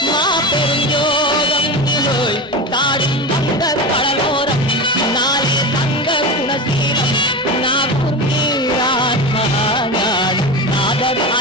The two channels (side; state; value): both; normal; correlation 0.24